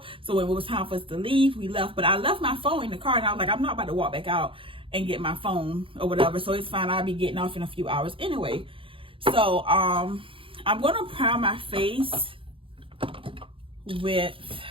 So when it was time for us to leave, we left. But I left my phone in the car, and I was like, I'm not about to walk back out and get my phone or whatever. So it's fine. I'll be getting off in a few hours anyway. So I'm gonna prime my face with,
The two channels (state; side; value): late; left; 0.25 ms